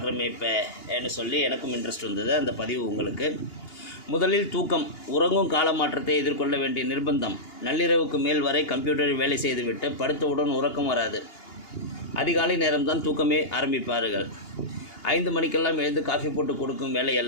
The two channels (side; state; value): right; late; 2.8 ms